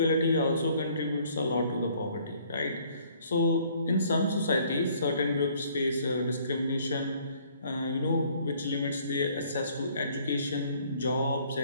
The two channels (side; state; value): both; inverted; correlation -0.60